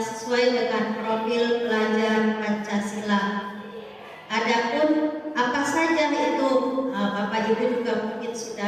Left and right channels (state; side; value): identical; both; correlation 1.00